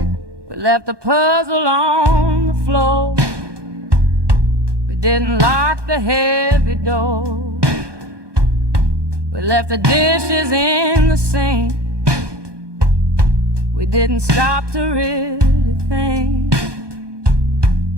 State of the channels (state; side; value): late; left; 1.2 ms